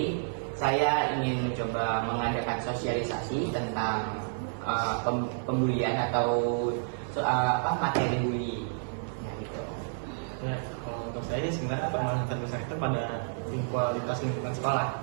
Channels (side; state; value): left; silent; 58 dB below the other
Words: saya ingin mencoba mengadakan sosialisasi tentang pembulian atau materi bullying. Ya, kalau untuk saya sebenarnya permasalahan terbesar itu pada kualitas lingkungan sekolah.